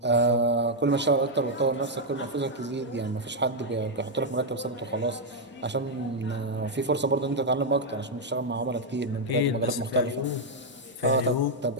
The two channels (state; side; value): normal; both; correlation -0.02